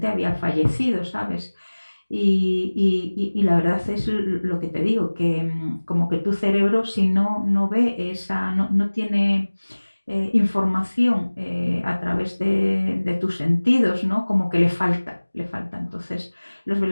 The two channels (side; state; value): both; inverted; correlation -1.00